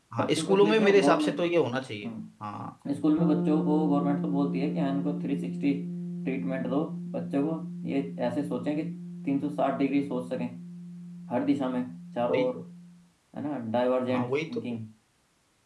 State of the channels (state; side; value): identical; both; correlation 1.00